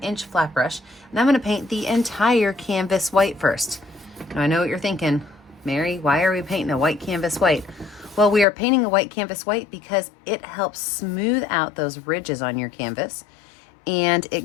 flat brush, and I'm going to paint the entire canvas white first. Now I know what you're thinking, Mary, why are we painting a white canvas white? Well, we are painting a white canvas white because it helps smooth out those ridges on your canvas, and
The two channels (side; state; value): right; drops out; at 8.5 s